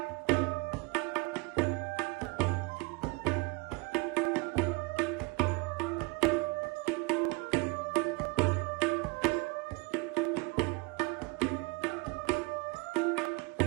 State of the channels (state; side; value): quieter; left; 27.0 dB